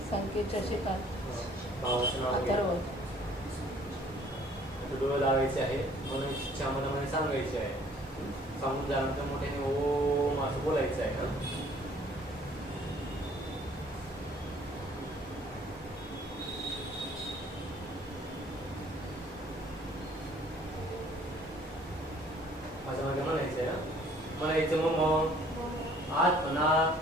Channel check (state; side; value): normal; both; correlation 0.57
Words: संकेत शशिकांत भावाचं नाव घे. अथर्व. डोळे लावायचे आहे म्हणून इच्छा मनामध्ये सांगायची आहे. सांगून झाल्यानंतर मोठ्याने ओम असं बोलायचं आहे. असं माझं म्हणायचं आहे. म्हणायचं मम आत्मना